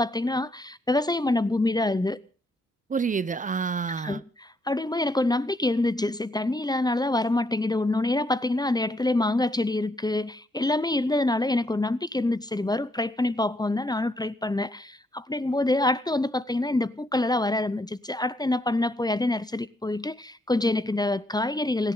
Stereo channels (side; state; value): both; normal; correlation 0.73